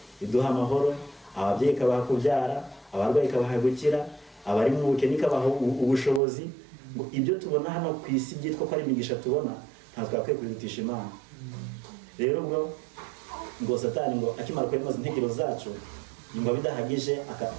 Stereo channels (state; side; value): drops out; left; at 6.2 s